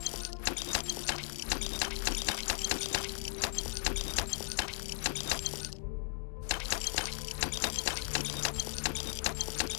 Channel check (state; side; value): silent; right; 53 dB below the other